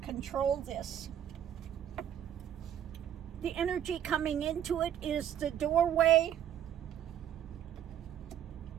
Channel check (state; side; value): quieter; left; 10.2 dB